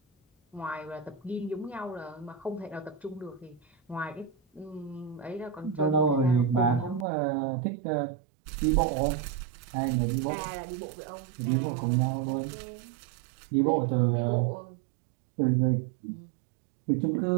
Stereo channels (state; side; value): drops out; left; at 7.1 s